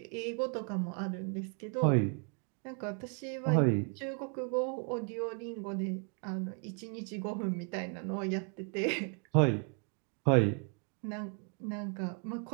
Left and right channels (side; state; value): left; quieter; 39.3 dB